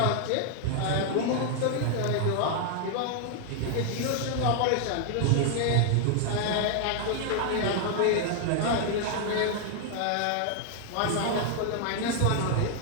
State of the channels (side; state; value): both; different; correlation 0.00